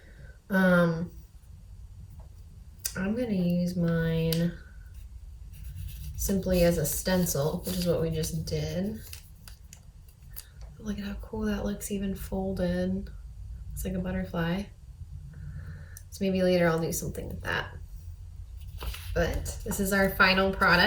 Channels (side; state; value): both; identical; correlation 1.00